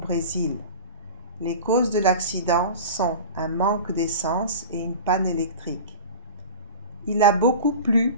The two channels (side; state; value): both; inverted; correlation -0.33